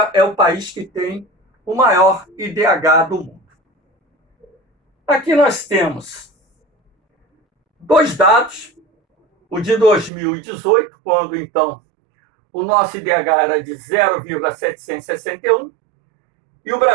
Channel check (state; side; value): drops out; left; at 10.1 s